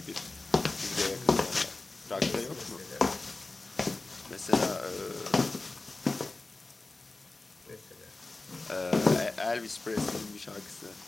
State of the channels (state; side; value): quieter; right; 3.2 dB